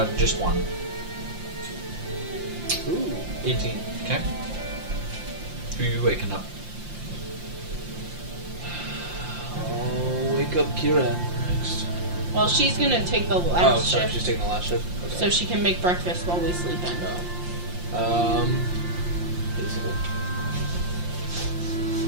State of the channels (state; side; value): late; left; 5.7 ms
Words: Just one. Ooh, 18. Okay. Who are you waking up? I'll wake up Kira next. Well, she's gonna take the Oh, last sorry, shift, she's taking the last shift? Okay. so she can make breakfast while we sleep in. Feasible.